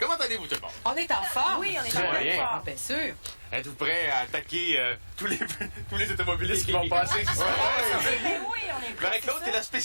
allez-vous, tout le monde? On est en forme. Oui, on est en forme. Bien sûr. Êtes-vous prêts à attaquer tous les automobilistes qui vont passer? Oui, on est prêts. Marie-Claude, t'es la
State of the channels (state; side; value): inverted; both; correlation -1.00